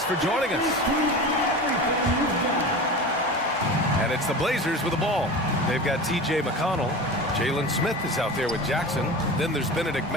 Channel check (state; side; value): normal; both; correlation 0.31